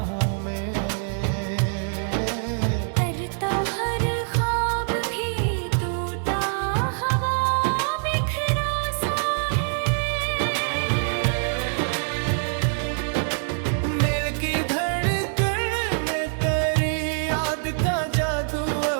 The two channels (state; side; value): silent; left; digital silence